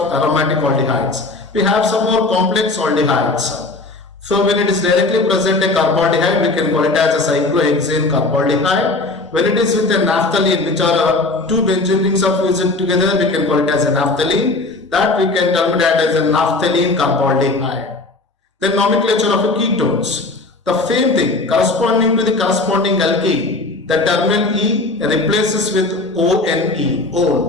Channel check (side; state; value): right; quieter; 3.2 dB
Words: aromatic aldehydes. We have some more complex aldehydes. So when it is directly present a carbaldehyde, we can call it as a cyclohexane carbaldehyde. When it is with a naphthalene, which are two benzene rings are fused together, we can call it as a naphthalene. That we can term that as a naphthalene carbaldehyde. Then nomenclature of ketones. The same thing, corresponding to the corresponding alkene, the terminal E replaces with ONE,